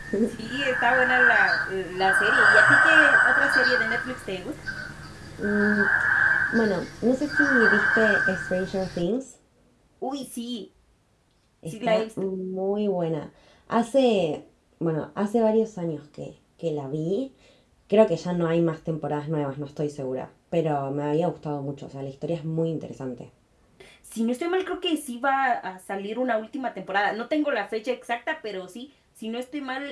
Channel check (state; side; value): identical; both; correlation 1.00